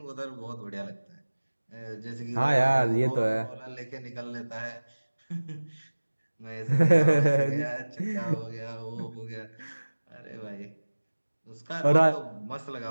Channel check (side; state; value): both; inverted; correlation -1.00